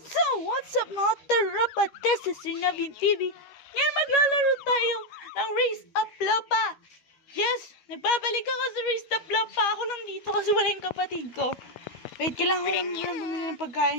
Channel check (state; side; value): late; right; 12 ms